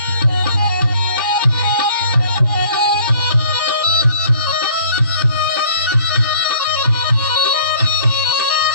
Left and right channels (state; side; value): inverted; both; correlation -0.54